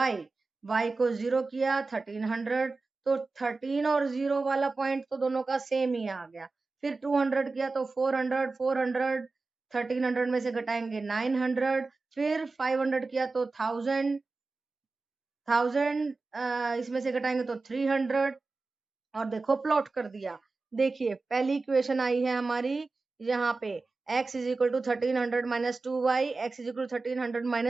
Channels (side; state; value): left; quieter; 3.8 dB